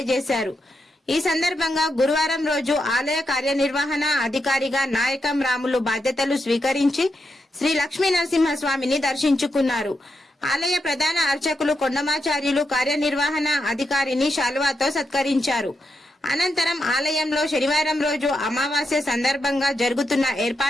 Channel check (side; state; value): both; normal; correlation 0.85